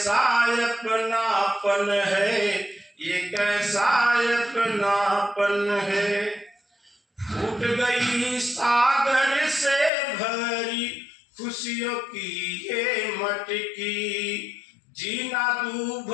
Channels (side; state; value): right; drops out; at 9.9 s